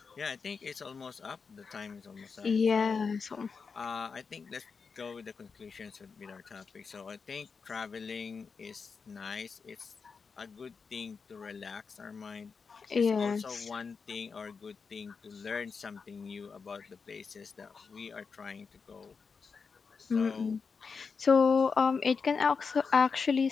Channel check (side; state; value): right; quieter; 5.3 dB